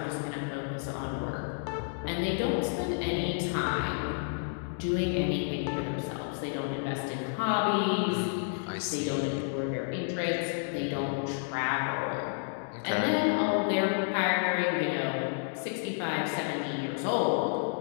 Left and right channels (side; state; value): right; silent; digital silence